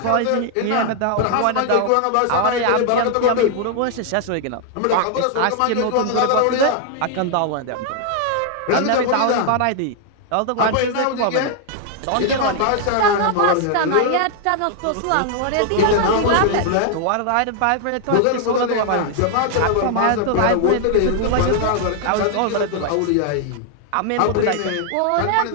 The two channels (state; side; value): different; both; correlation 0.00